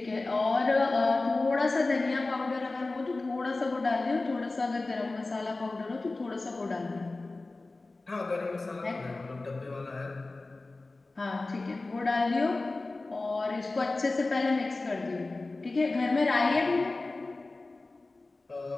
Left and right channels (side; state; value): right; quieter; 3.3 dB